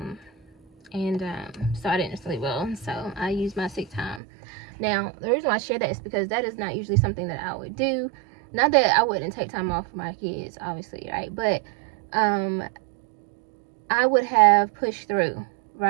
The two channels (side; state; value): left; drops out; at 4.2 s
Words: So I didn't sleep well, so I used my sick time. Now, the reason why I share that is because that is not usually something that I would do. Not that I wouldn't take time off for my kids, obviously, right? But I would have pushed through,